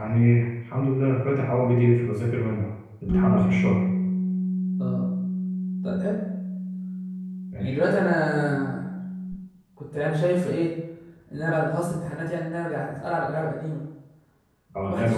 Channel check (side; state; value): both; identical; correlation 1.00